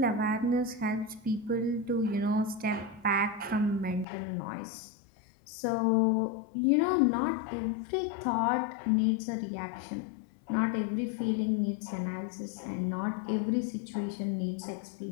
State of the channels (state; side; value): drops out; right; at 4.0 s